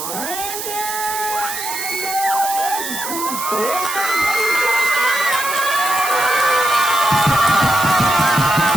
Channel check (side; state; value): right; noise; hiss, 6 dB below the sound